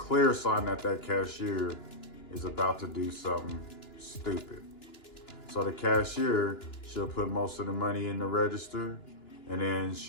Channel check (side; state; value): right; late; 2.9 ms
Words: sign that cashier is about to do something stupid. So the cashier, she'll put most of the money in the register and then